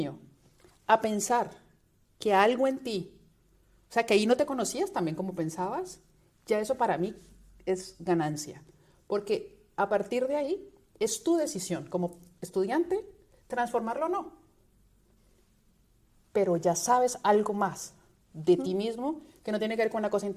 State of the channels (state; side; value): identical; both; correlation 1.00